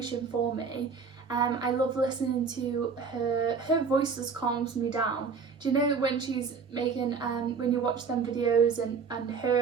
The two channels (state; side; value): quieter; left; 5.5 dB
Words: for me. I love listening to her voice just calms me down. Do you know when she's making when you watch them videos and